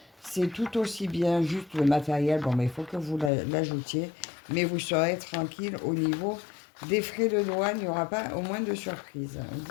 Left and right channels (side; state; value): right; drops out; at 3.3 s